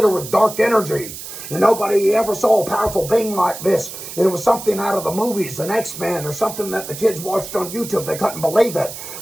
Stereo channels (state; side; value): noise; right; hiss, 11 dB below the sound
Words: with dark energy. And nobody ever saw a powerful being like this. And it was something out of the movies, an X-Men, or something that the kids watched on YouTube. They couldn't believe it.